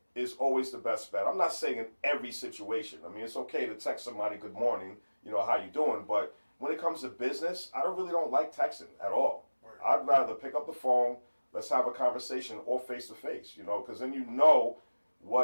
is always the best bet. I'm not saying in every situation. I mean, it's okay to text somebody good morning, you know, how you doing? But when it comes to business, I really don't like texting at all. I'd rather pick up the phone, let's have a conversation, or face to face, you know, because then you know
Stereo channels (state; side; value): inverted; both; correlation -1.00